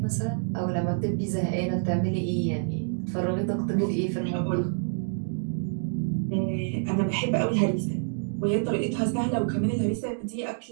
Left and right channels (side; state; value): left; silent; digital silence